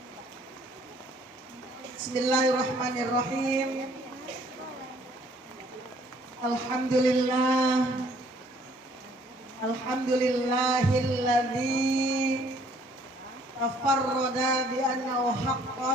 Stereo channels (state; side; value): normal; both; correlation 0.61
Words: Bismillahirrahmanirrahim. Alhamdulillah. Alhamdulillahilladzi tafarrada bi annahu